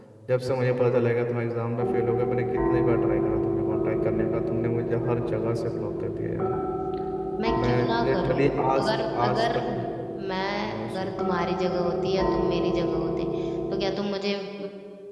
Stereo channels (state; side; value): identical; both; correlation 1.00